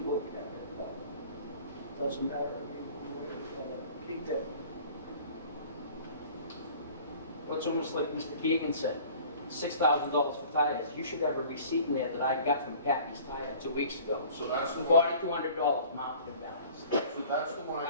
at it, but doesn't matter, we're gonna keep it. What's almost like Mr. Keegan said, $6,000 for tires. You should have a receipt in there that I got from Kathy's Tire 2 weeks ago. So that's the one, $4,200 mounted him down. so that's the one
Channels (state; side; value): inverted; both; correlation -0.47